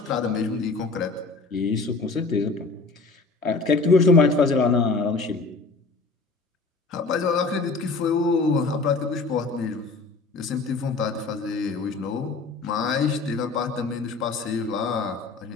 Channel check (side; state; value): right; quieter; 3.9 dB